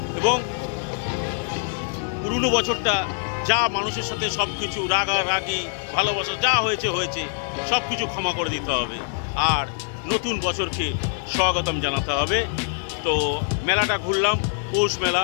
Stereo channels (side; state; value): right; silent; 63 dB below the other